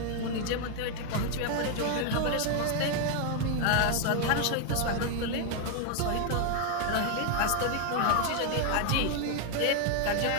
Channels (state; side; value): different; both; correlation 0.00